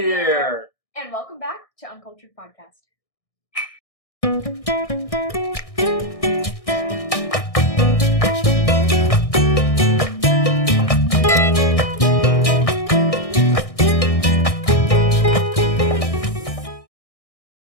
And welcome back to Uncultured Podcast.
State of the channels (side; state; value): right; late; 1.6 ms